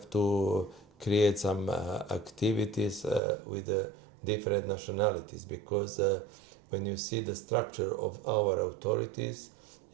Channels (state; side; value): drops out; left; at 3.2 s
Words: to create some activities with different nationalities, because when you see the structure of our authorities,